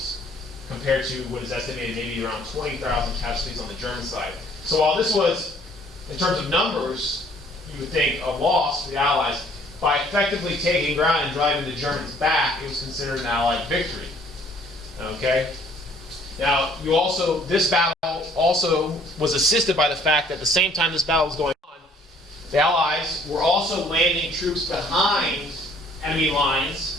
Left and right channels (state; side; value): normal; both; correlation 0.59